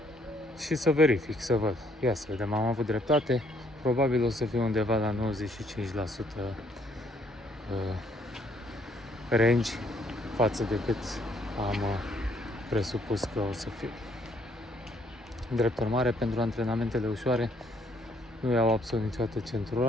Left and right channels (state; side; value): normal; both; correlation 0.67